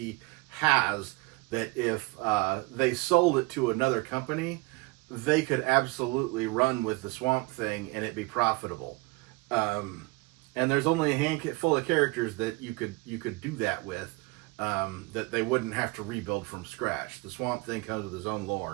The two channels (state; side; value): quieter; left; 25.0 dB